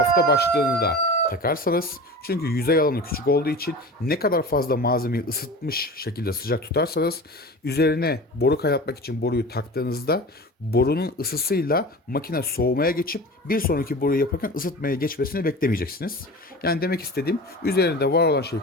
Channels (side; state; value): both; normal; correlation 0.34